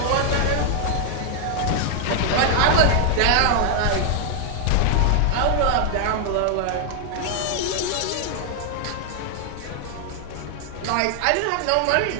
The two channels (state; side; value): different; both; correlation 0.00